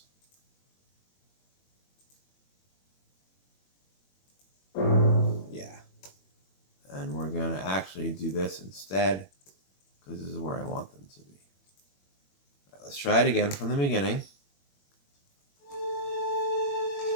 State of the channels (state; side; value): late; right; 21 ms